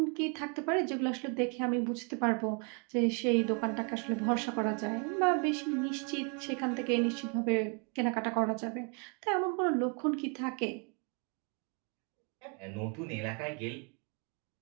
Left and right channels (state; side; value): quieter; left; 36.2 dB